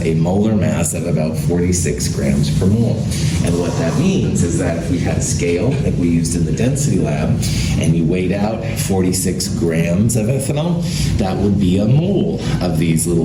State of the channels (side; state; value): both; identical; correlation 1.00